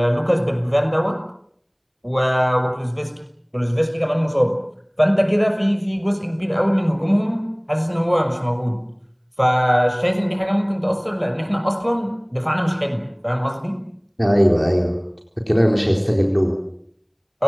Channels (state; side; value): identical; both; correlation 1.00